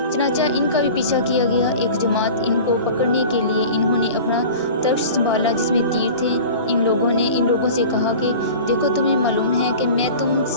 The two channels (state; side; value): inverted; both; correlation -0.39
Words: चनाचा इनका भी पीछा किया गया। एक जमात इनको पकड़ने के लिए इन्होंने अपना तर्श संभाला जिसमें तीर थे। इन लोगों से कहा कि देखो, तुम्हें मालूम है कि मैं तुम